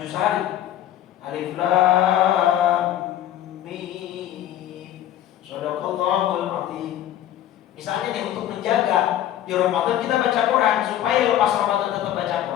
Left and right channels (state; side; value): quieter; right; 12.0 dB